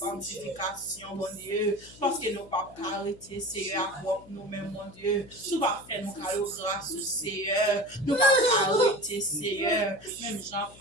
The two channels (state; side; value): noise; left; hum, 22 dB below the sound